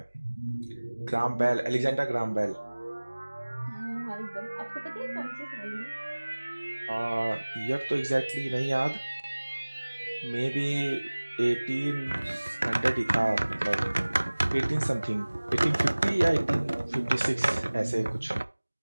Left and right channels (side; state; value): both; inverted; correlation -1.00